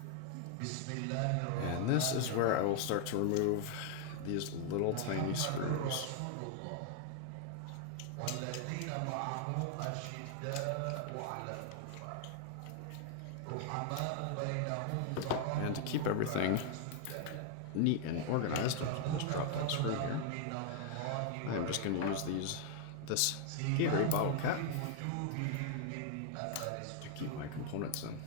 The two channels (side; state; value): both; different; correlation 0.00